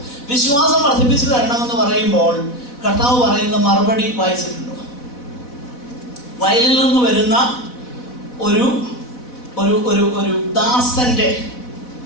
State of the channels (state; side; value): late; right; 4.1 ms